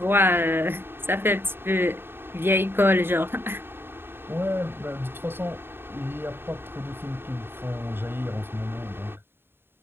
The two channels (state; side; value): late; left; 0.11 ms